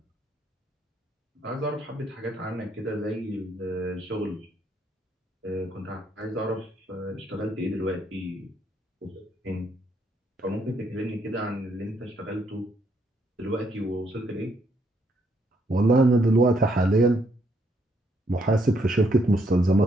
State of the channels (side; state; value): both; normal; correlation 0.72